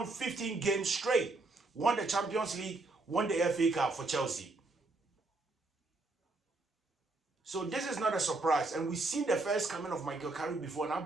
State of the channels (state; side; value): quieter; left; 3.2 dB